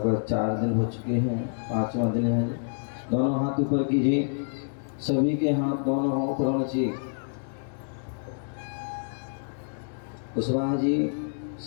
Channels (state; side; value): silent; right; digital silence